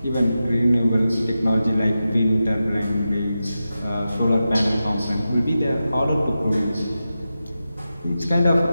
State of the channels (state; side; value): inverted; both; correlation -0.91